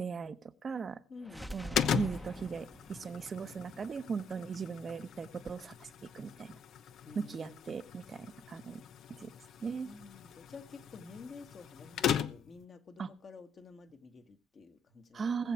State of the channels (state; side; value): normal; both; correlation 0.69